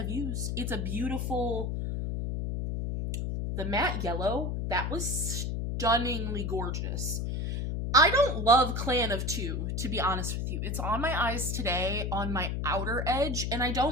used, it's a beautiful... The matte yellow, that was stunningly gorgeous. I don't love Clan of Two, to be honest with you. It's on my eyes today, on my outer edge, and I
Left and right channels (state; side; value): noise; left; hum, 1 dB below the sound